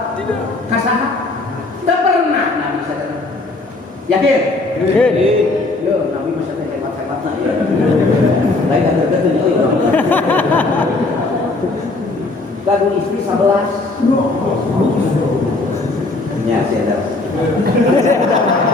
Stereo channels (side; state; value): right; quieter; 3.2 dB